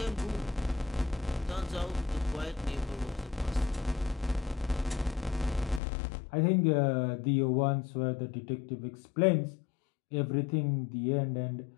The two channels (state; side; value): drops out; right; at 5.8 s